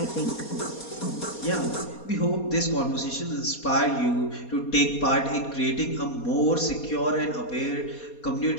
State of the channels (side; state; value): right; late; 4.2 ms